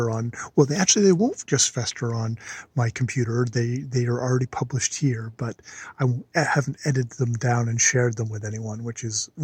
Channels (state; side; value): identical; both; correlation 1.00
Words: on. Well, they won't just fester on my computer. They are already published here, but I haven't edited them down and shared them with anyone, which is